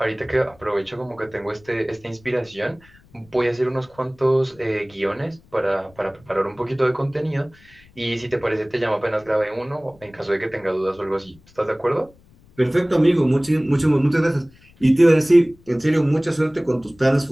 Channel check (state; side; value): noise; left; rumble, 28 dB below the sound